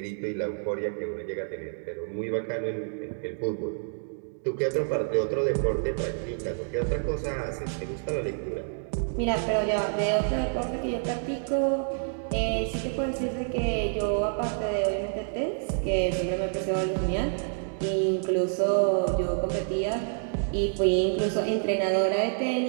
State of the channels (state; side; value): silent; left; digital silence